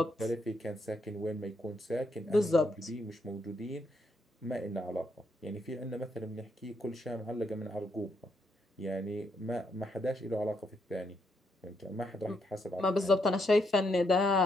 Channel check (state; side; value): normal; both; correlation 0.76